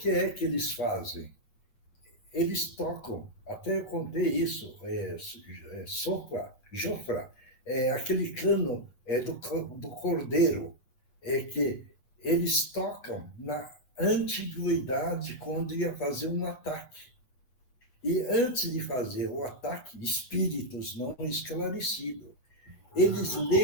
é que eles fazem? Eles tocam, até eu contei isso, sopra, jofra, aquele cano do cordeiro, é que eles tocam na antiguidade quando ia fazer um ataque. E antes de fazer o ataque, espíritos não esclarecidos, eles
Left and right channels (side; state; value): right; late; 7.8 ms